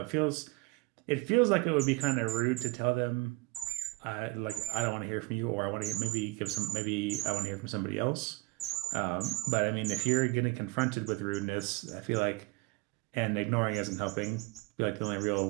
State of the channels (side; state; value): left; quieter; 22.6 dB